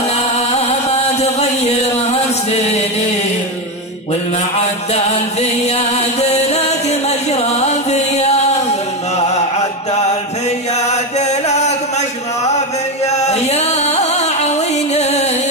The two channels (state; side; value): normal; both; correlation 0.13